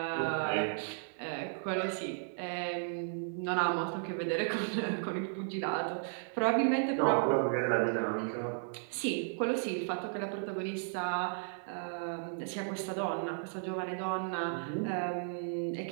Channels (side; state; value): left; silent; 55 dB below the other